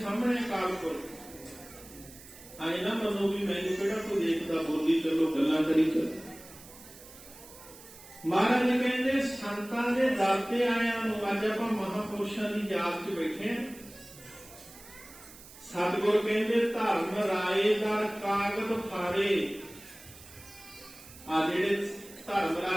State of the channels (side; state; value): right; noise; hiss, 19 dB below the sound